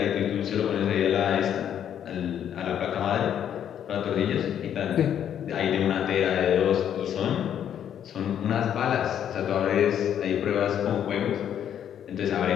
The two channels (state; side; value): quieter; right; 9.5 dB